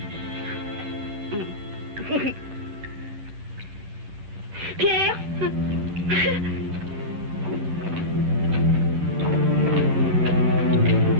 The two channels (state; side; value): late; left; 10 ms